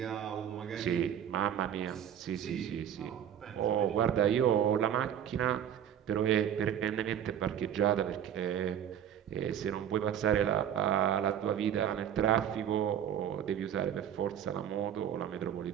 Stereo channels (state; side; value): quieter; left; 9.5 dB